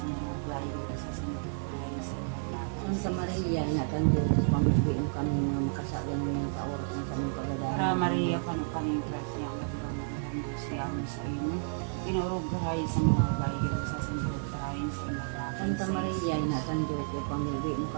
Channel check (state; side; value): silent; left; digital silence